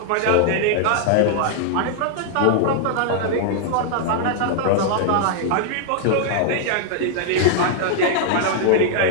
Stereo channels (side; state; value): both; different; correlation 0.00